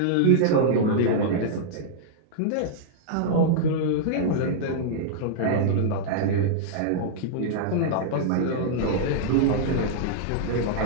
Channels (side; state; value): both; different; correlation -0.02